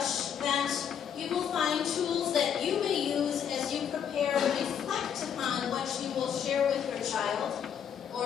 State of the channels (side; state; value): right; quieter; 8.3 dB